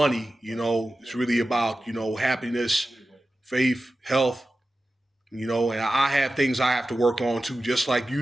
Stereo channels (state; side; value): normal; both; correlation 0.94